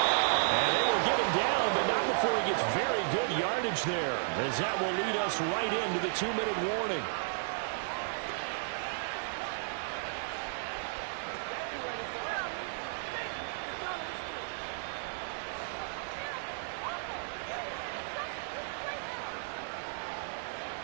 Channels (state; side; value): silent; left; digital silence